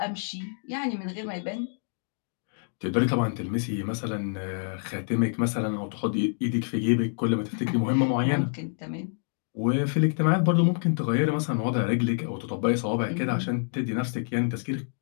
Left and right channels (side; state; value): right; silent; digital silence